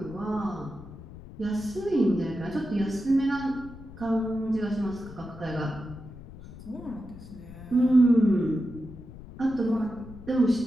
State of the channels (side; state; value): left; noise; rumble, 15 dB below the sound